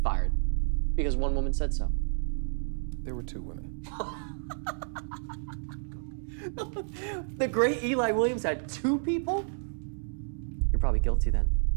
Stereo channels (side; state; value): left; silent; digital silence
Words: fired because one woman said so. There were two women. The great Eli Williams had two people? You're probably guilty then.